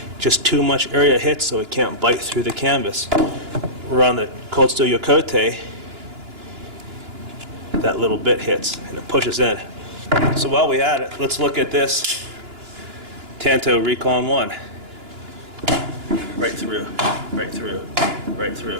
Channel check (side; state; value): left; late; 2.9 ms